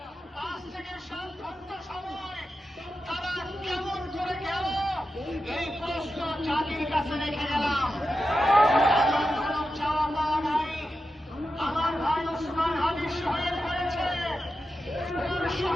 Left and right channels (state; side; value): normal; both; correlation 0.90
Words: 5 থেকে 7 ঘন্টা সময় তারা কেমন করে গেল, এই প্রশ্ন জাতির কাছে রেখে গেলাম। এমন কোন চাওয়া পাওয়া নাই। আমার ভাই ওসমান হাদি শহীদ হয়েছে, ওর